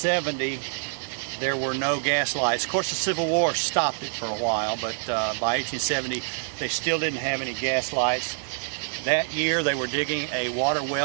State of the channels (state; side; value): silent; left; 61 dB below the other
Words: there were no gas lights. Of course, the Civil War stopped it for a while, but by 1870, they still didn't have any gas lights. That year, they were digging a water